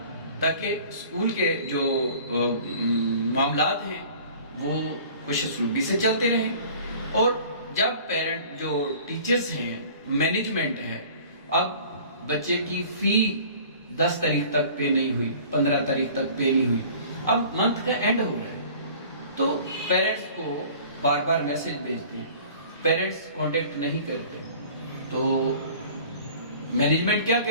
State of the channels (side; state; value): both; inverted; correlation -0.47